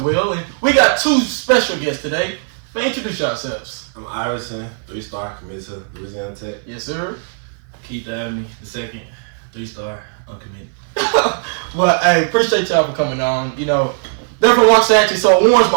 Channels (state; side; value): silent; left; 58 dB below the other